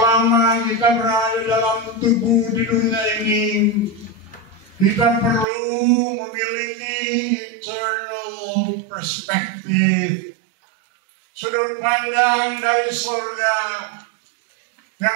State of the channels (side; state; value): left; drops out; at 5.5 s